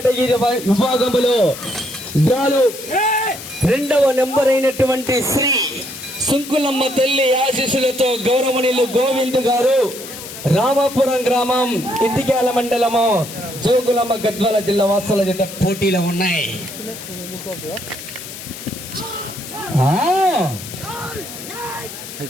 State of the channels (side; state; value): left; noise; hiss, 12 dB below the sound